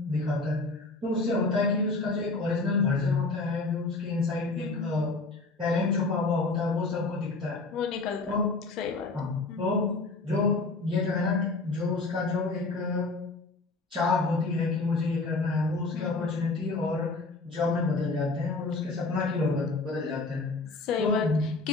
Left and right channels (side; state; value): right; quieter; 3.5 dB